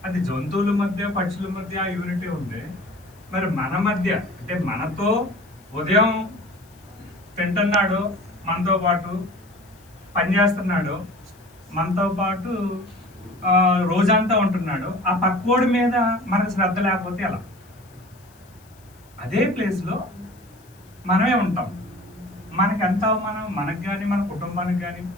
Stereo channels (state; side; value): noise; left; hiss, 29 dB below the sound